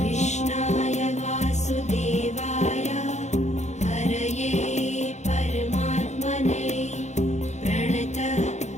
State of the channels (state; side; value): late; right; 0.33 ms